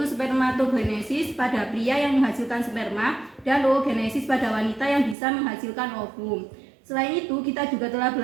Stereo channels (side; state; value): left; drops out; at 5.2 s